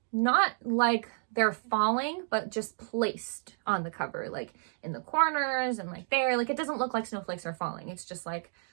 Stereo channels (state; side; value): silent; left; 57 dB below the other